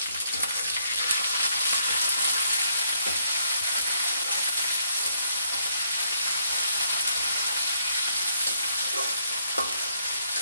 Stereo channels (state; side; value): inverted; both; correlation -0.70